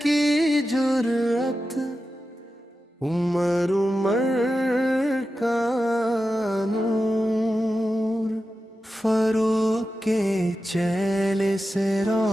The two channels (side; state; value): both; normal; correlation 0.91